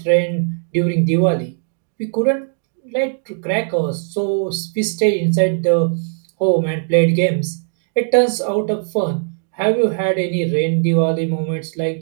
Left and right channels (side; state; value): left; silent; 61 dB below the other